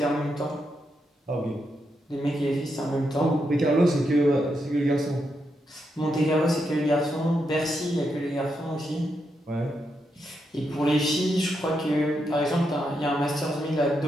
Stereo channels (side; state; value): both; normal; correlation 0.83